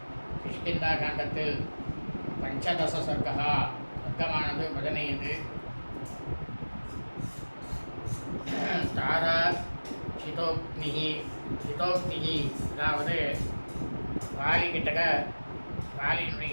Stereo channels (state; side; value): inverted; both; correlation -1.00